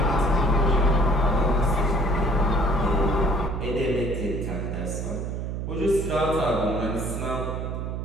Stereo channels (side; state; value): right; noise; hum, 4 dB below the sound